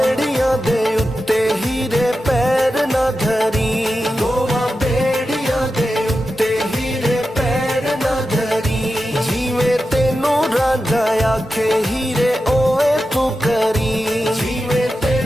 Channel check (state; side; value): normal; both; correlation 0.91